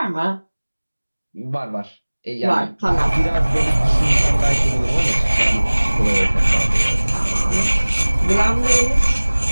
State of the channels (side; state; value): both; inverted; correlation -1.00